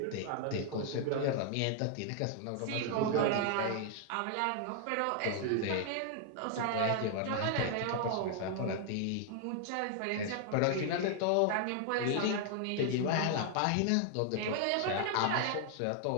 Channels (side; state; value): both; different; correlation 0.00